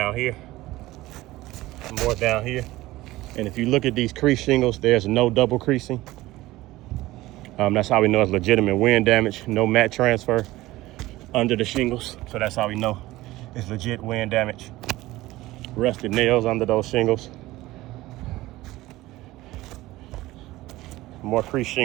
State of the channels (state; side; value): quieter; left; 17.8 dB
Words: here. More down here. And if you look at these crease shingles, there's no double creasing. That's how we know it's legitimate wind damage. No mat transfer under the shingles. So that's how we know it's legit wind damage. Rusted nails under those shingles. More crease